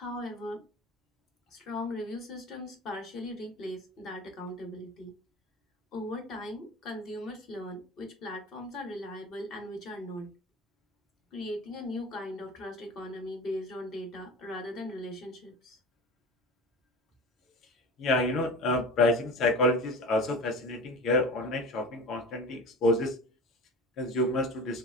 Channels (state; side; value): normal; both; correlation 0.33